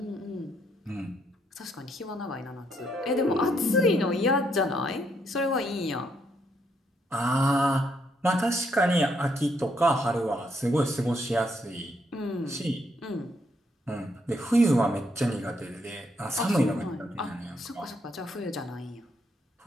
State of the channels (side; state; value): both; normal; correlation 0.75